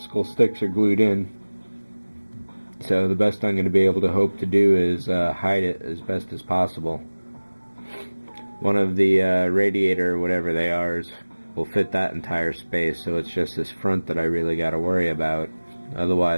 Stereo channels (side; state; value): both; inverted; correlation -1.00